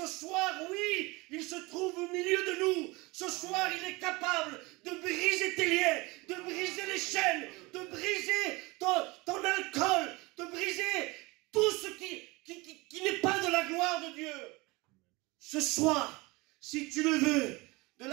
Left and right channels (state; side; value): quieter; left; 23.9 dB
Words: soir, oui, il se trouve au milieu de nous. Ce soir, il est capable de briser tes liens, de briser les chaînes, de briser ton alcool, de briser tout ce qui n'est pas de la gloire de Dieu. Ce soir, si tu le veux, de